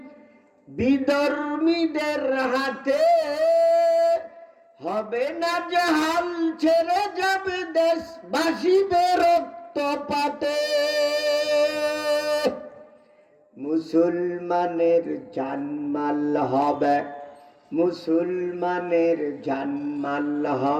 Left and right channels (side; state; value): both; identical; correlation 1.00